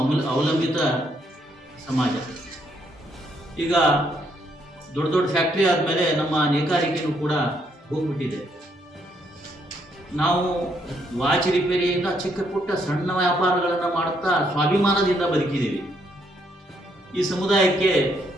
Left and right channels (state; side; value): normal; both; correlation 0.72